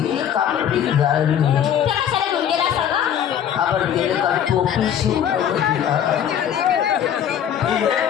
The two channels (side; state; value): right; quieter; 9.4 dB